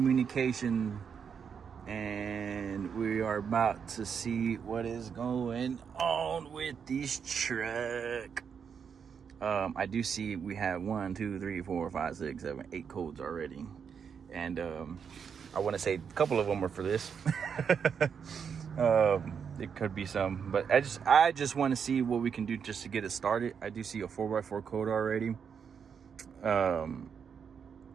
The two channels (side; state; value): left; quieter; 6.9 dB